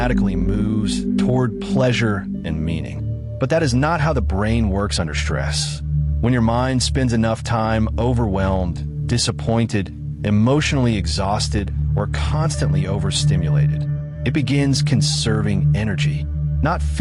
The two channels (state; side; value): identical; both; correlation 1.00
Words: moves toward pleasure and meaning. But that is not how the brain works under stress. When your mind spends enough time overwhelmed, disappointed, emotionally exhausted, or constantly overstimulated, it begins conserving energy, not